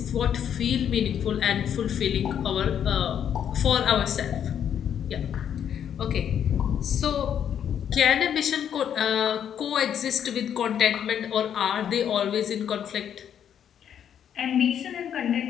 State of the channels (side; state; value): right; quieter; 9.0 dB